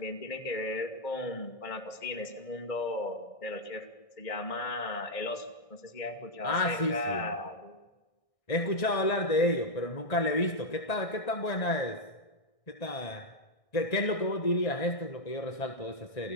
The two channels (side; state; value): right; late; 1.6 ms